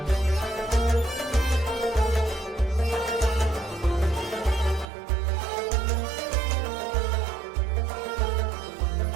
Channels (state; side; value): drops out; left; at 4.9 s